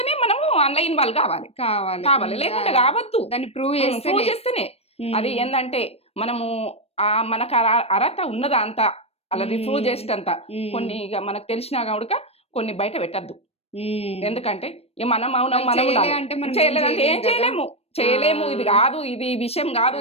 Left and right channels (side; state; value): right; late; 0.29 ms